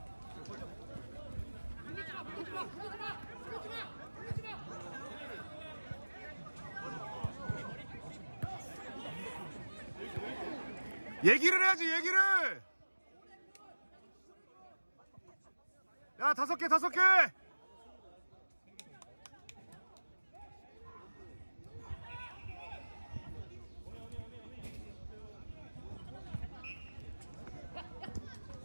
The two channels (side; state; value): both; inverted; correlation -1.00